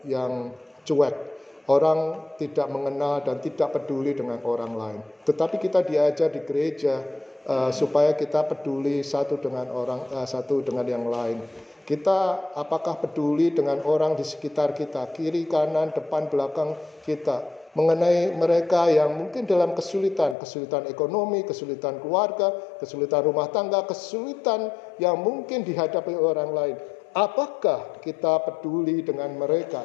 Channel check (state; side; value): drops out; right; at 20.4 s